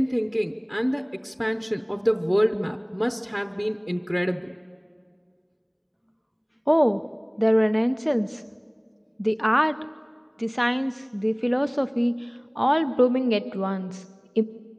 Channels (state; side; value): identical; both; correlation 1.00